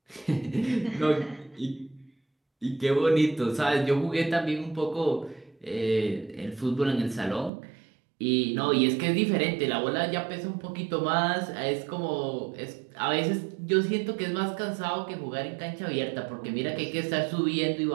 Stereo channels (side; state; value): left; drops out; at 7.5 s